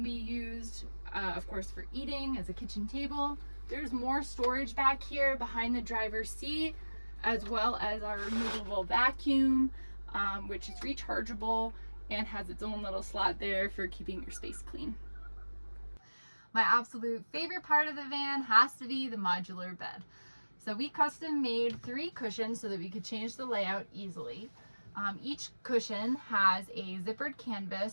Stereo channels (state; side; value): inverted; both; correlation -1.00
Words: be used, of course, for eating as a kitchen table. There's more storage back here behind the driver's seat, as well as our removable vacuum, which is rechargeable and has its own little slot there for keeping your space clean. My absolute favorite part of the van has to be the modular bed. So we custom made 3 cushions so that we could change the layout easily. Each cushion has a zippered